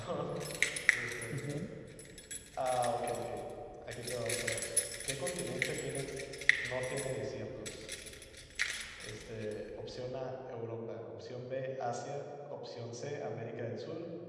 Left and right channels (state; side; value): identical; both; correlation 1.00